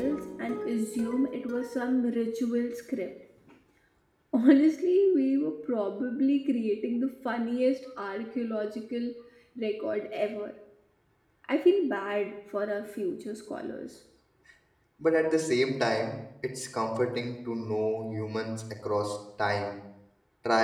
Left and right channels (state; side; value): identical; both; correlation 1.00